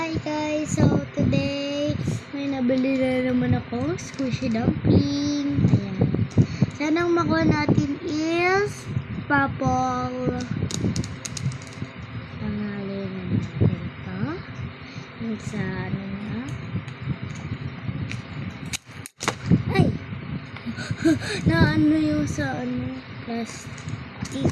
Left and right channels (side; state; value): both; identical; correlation 1.00